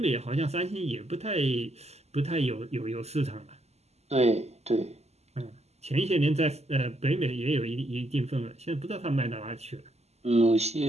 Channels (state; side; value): late; left; 0.31 ms